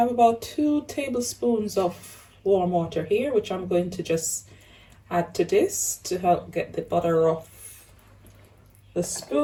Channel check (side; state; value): both; identical; correlation 1.00